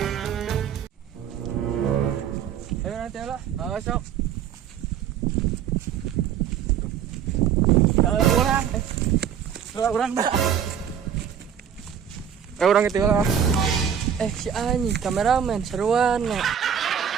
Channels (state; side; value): quieter; left; 8.7 dB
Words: Ayo nanti lah, masuk. Kalau orang dah. Orang itu lah. Si Ani, kameramen seruan.